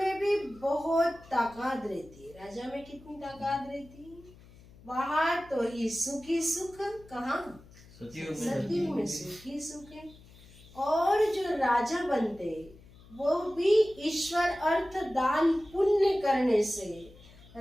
भी बहुत ताकत रहती। राजा में कितनी ताकत रहती? वहां तो ही सुखी सुख, कहाँ? सतयुग में सुखी सुख है। और जो राजा बनते वो भी ईश्वर अर्थ दान पुण्य करने से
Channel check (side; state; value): left; noise; hum, 23 dB below the sound